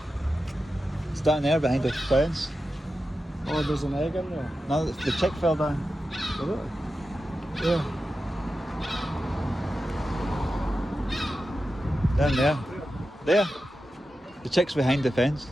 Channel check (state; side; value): normal; both; correlation 0.91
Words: It's down there behind the fence. Oh, there's an egg in there. No, the chick fell down. Did it? Yeah. Down there. There. The chick's behind the fence.